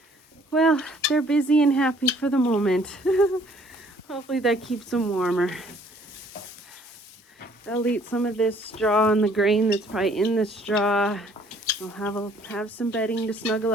Well, they're busy and happy for the moment. Hopefully that keeps them warmer. They'll eat some of this straw and the grain that's probably in the straw. They'll have some bedding to snuggle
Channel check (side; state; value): both; normal; correlation 0.60